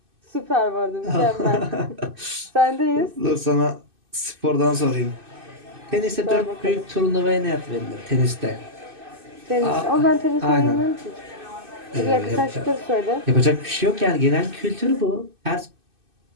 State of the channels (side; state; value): left; late; 2.6 ms